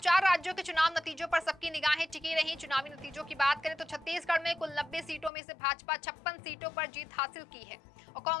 राज्यों के चुनाव नतीजों पर सबकी निगाहें टिकी रहीं। चुनावी नतीजों की बात करें तो छत्तीसगढ़ में कुल 90 सीटों में से भाजपा 56 सीटों पर जीत हासिल की है और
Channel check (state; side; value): drops out; right; at 5.3 s